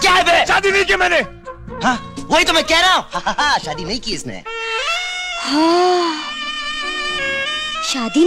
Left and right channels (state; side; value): identical; both; correlation 1.00